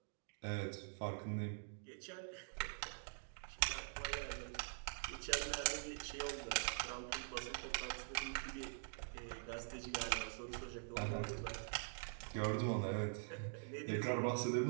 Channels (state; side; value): silent; left; digital silence